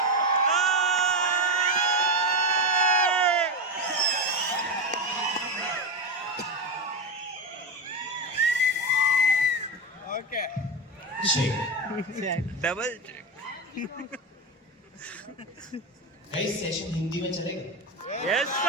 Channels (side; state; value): both; normal; correlation 0.16